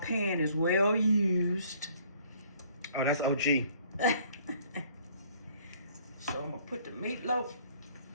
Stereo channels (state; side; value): inverted; both; correlation -0.59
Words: is well used. Oh, that's OG. So I'm gonna put the meatloaf